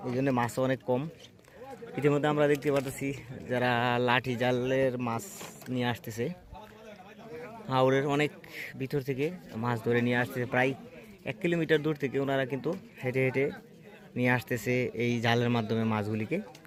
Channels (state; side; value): identical; both; correlation 1.00